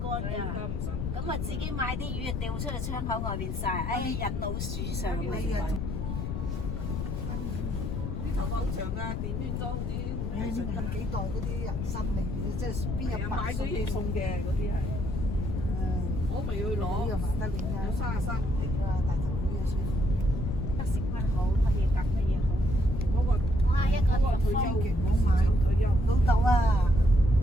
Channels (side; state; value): left; noise; rumble, 2 dB below the sound